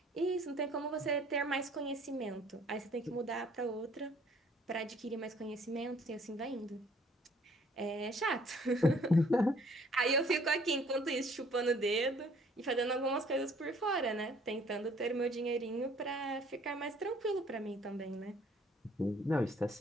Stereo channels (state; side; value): normal; both; correlation 0.58